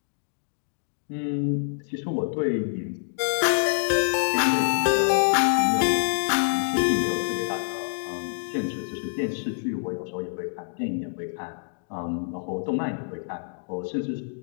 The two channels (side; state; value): right; silent; digital silence